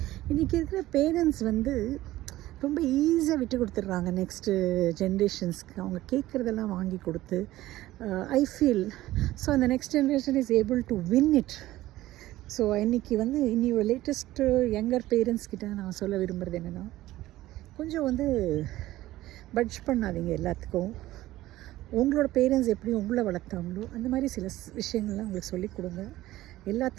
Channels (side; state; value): left; quieter; 16.0 dB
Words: இன்றைக்கி இருக்கிற பேரண்ட்ஸ் வந்து ரொம்ப ஈஸியாக விட்டு கொடுத்துட்றாங்க நெக்ஸ்ட்டு ஜென்ரேஷன்ஸ்க்கு. அவங்க கேட்குறதெல்லாம் வாங்கி கொடுத்து ஐ ஃபீல் ஸோ அந்த next generation is able to win it. So இன்றைக்கி வந்து ஒரு லேட்டஸ்ட்டு யங்கர் பேரண்ட்ஸ்கிட்ட நான் சொல்ல விரும்புகிறது என்னென்னா, கொஞ்சம் வந்து பட்ஜ் பண்ணாதீங்க எல்லாத்துக்கும். உங்களோட பேரண்ட்ஸ் எப்படி உங்களை வளர்த்தாங்களோ அந்த மாதிரி சில விஷயங்கள்லாம் உங்களுக்கு சொல்லிக் கொடுங்க.